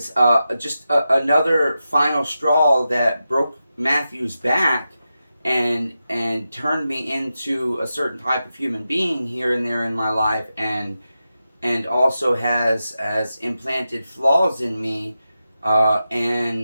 just another final straw that broke Matthew's back and turned me into a certain type of human being here and there in my life, and also has implanted flaws in me,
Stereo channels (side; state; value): both; inverted; correlation -0.90